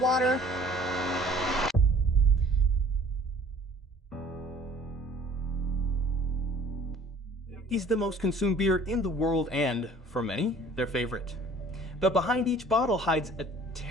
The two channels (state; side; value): normal; both; correlation 0.52